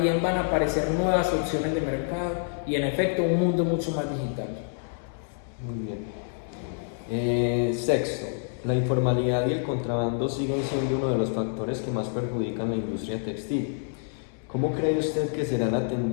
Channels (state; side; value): silent; right; 60 dB below the other